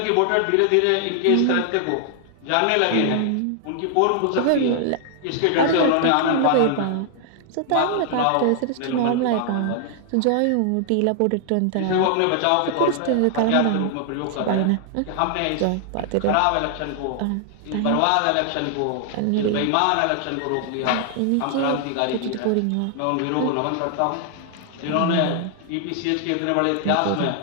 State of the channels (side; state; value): both; different; correlation 0.00